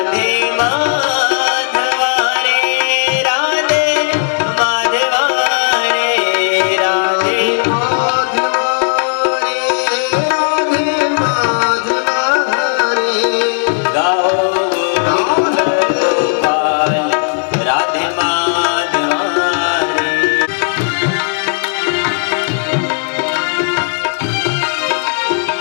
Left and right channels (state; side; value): silent; right; digital silence